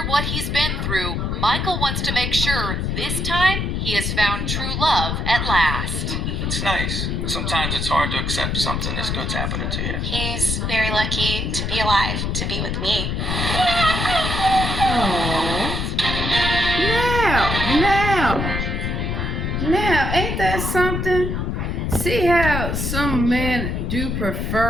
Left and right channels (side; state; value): left; noise; rumble, 1 dB below the sound